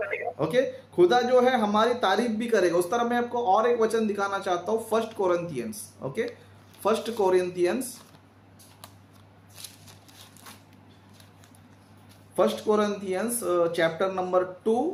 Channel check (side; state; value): both; identical; correlation 1.00